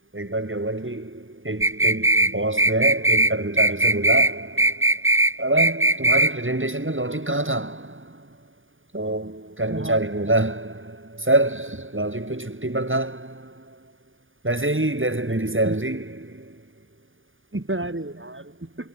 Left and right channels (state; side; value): late; left; 0.58 ms